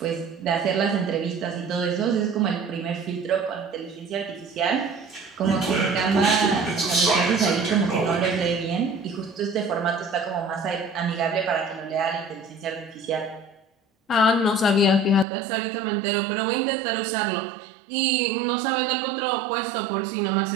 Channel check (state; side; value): drops out; left; at 15.2 s